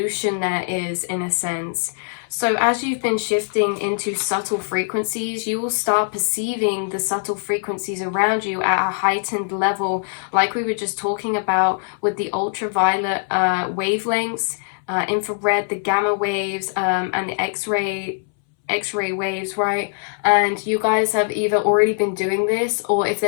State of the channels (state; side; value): silent; right; 63 dB below the other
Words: there is, in a sense. So as you've been shifting into subtle frequencies, you will start perceiving the subtle frequencies around you at a heightened level, like we were just talking about with the ultraviolet wavelengths, infrared, the gamma waves, and the X-ray waves, right? And you guys have either already been doing this, or if